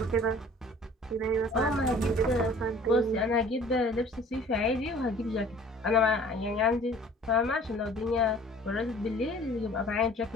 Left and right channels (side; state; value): both; normal; correlation 0.50